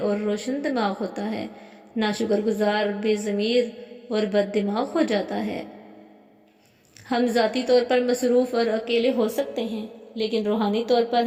روشن دماغ ہوتا ہے، نہ شکر گزار بے ضمیر اور بد دماغ ہو جاتا ہے۔ ہم ذاتی طور پر مصروف اور اکیلے ہو سکتے ہیں، لیکن روحانی طور پر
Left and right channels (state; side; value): identical; both; correlation 1.00